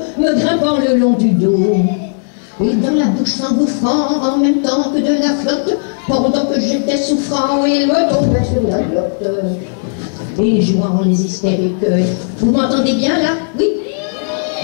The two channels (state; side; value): silent; right; digital silence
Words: me grimpant le long du dos. Et dans la bouche s'engouffrant, en même temps que de la flotte, pendant que j'étais souffrant, il me tombait sur la glotte. Et jouant les hystériques. Vous m'entendez bien là? Oui?